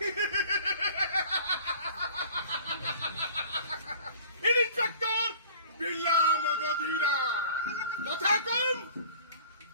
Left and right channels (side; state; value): both; inverted; correlation -0.47